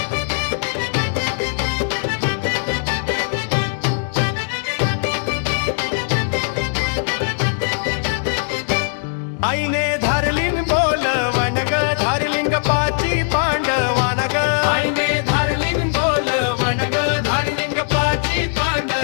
आईने धारलीन बोलवण ग धारलिंग पाची पांडवान ग, आईने धारलीन बोलवण ग धारलिंग पाची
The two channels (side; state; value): right; silent; digital silence